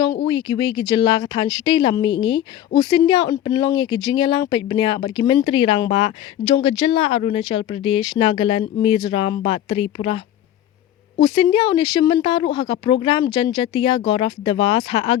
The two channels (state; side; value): quieter; right; 11.7 dB